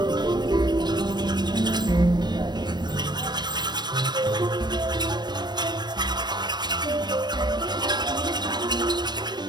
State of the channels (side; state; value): left; late; 0.21 ms